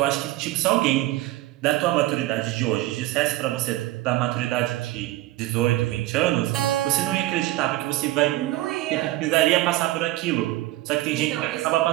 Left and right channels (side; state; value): left; quieter; 16.8 dB